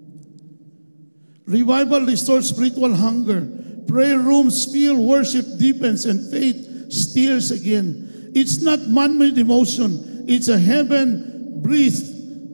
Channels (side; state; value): both; inverted; correlation -1.00